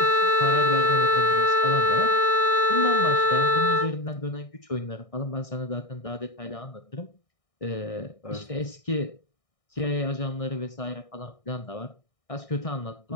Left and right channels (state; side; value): late; right; 1.6 ms